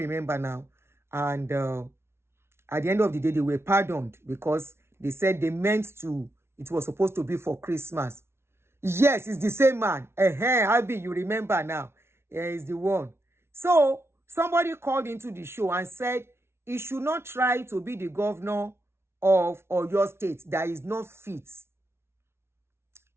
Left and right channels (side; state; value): left; late; 0.12 ms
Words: now. And at the end of the day, they were pardoned because they said it was supposed to be for Christmas. Yes, it's the same man. Abi, you remember now. He's the one. So somebody called into the show and said he should not try to be the governor of Oyo State that is not fit.